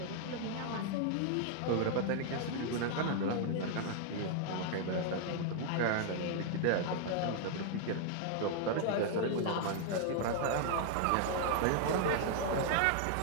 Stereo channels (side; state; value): both; different; correlation 0.00